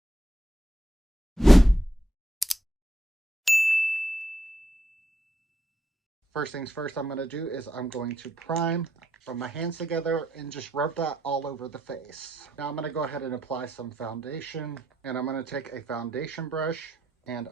First things first I'm going to do is I'm going to prime, rub my hands together and just rub that all over the face. Now I'm going to go ahead and apply some foundation, and I'm going to take a foundation brush and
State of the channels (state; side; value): normal; both; correlation 0.80